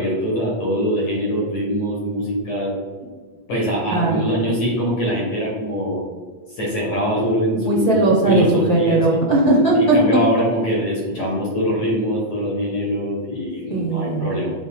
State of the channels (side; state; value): right; late; 8.2 ms